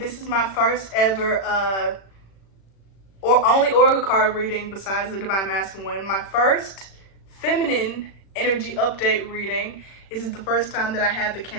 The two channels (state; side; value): late; right; 36 ms